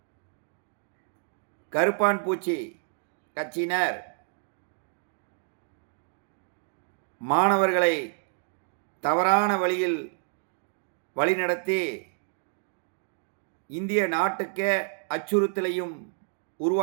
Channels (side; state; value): left; silent; digital silence